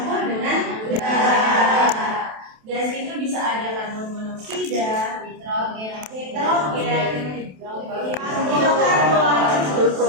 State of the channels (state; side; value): late; left; 27 ms